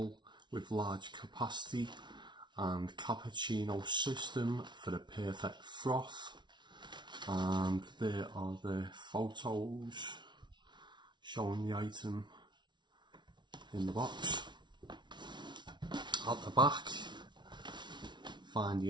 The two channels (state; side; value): late; left; 0.22 ms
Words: with large capacity, and cappuccino system for the perfect froth. And there are the photos showing the item in the box. At the back, find